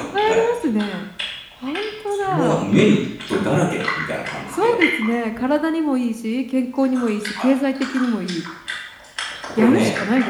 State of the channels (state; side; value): identical; both; correlation 1.00